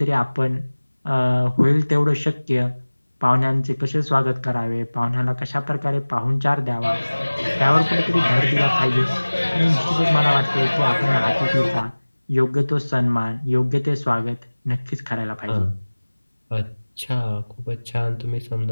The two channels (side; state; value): both; inverted; correlation -1.00